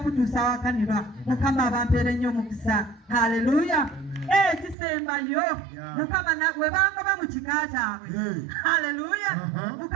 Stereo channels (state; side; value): drops out; left; at 4.8 s